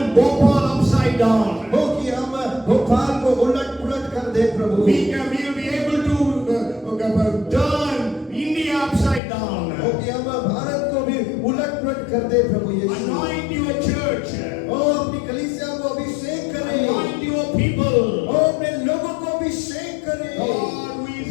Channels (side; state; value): right; drops out; at 9.2 s